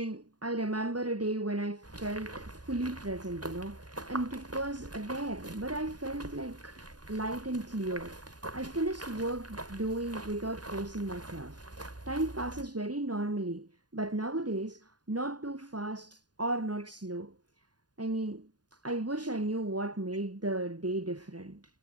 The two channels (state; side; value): late; left; 0.69 ms